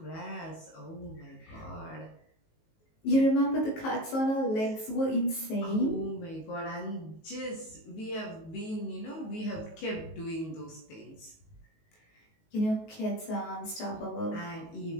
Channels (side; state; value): right; late; 19 ms